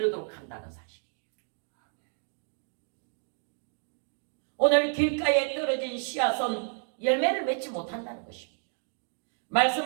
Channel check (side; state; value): left; silent; 57 dB below the other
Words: 한다는 사실이에요. 오늘 길가에 떨어진 씨앗은 열매를 맺지 못한다는 것입니다.